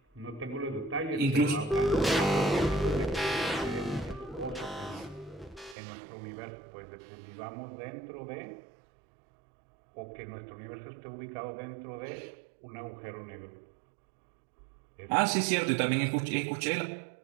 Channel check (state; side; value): drops out; left; at 5.8 s